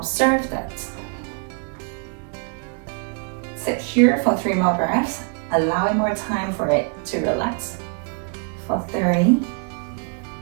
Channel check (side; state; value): left; quieter; 38.0 dB